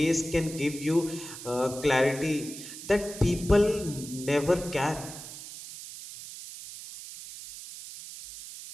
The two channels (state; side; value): noise; right; hiss, 12 dB below the sound